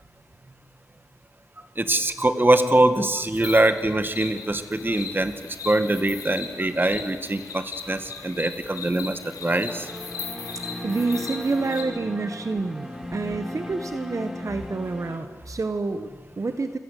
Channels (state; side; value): normal; both; correlation 0.82